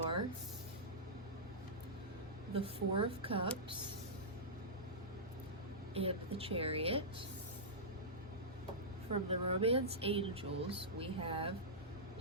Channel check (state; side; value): normal; both; correlation -0.14